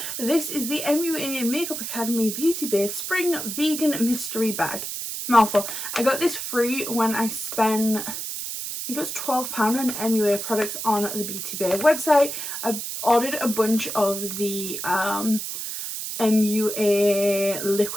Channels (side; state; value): right; noise; hiss, 5 dB below the sound